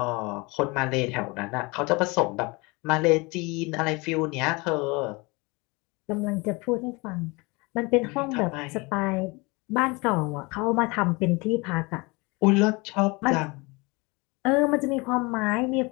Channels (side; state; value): right; quieter; 26.3 dB